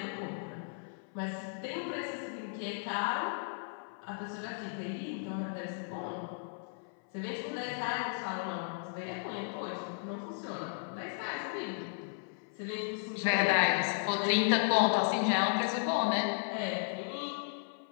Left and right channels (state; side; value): silent; right; 54 dB below the other